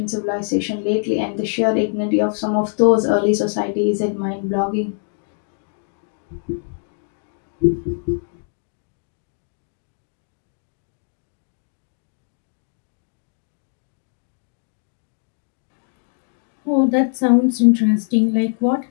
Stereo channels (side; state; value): right; silent; 64 dB below the other